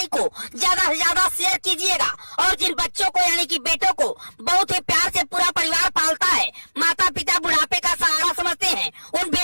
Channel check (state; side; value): inverted; both; correlation -1.00